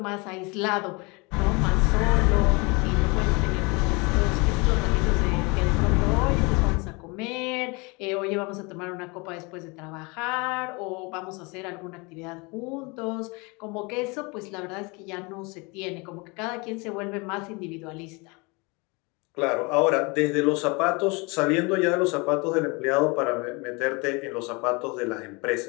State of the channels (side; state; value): right; quieter; 28.0 dB